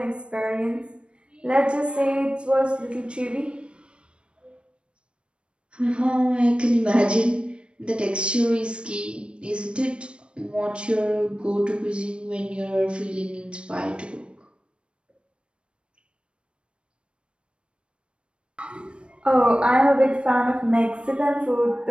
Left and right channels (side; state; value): left; late; 0.057 ms